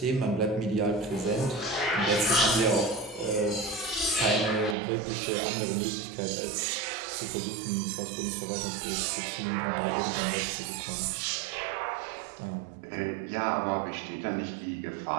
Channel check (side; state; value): left; drops out; at 4.8 s